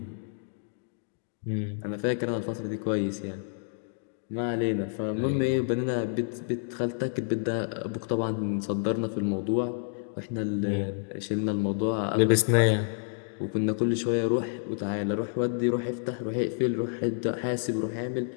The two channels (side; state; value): right; silent; digital silence